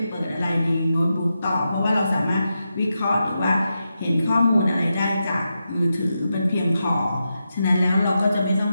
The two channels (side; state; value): both; inverted; correlation -0.88